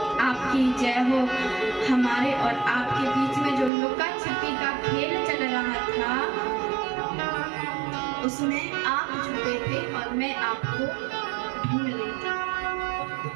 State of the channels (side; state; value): left; drops out; at 3.7 s